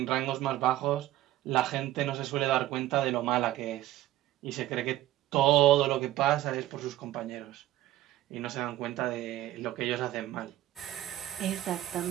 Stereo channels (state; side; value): quieter; left; 14.4 dB